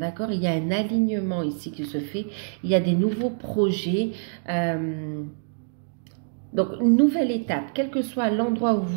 Il y a un alignement ici qui se fait. Il y a des nouveaux projets. Donc, une nouvelle étape, quel que soit l'endroit où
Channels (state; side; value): silent; left; digital silence